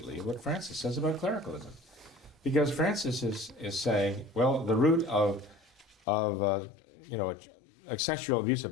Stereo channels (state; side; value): drops out; right; at 6.0 s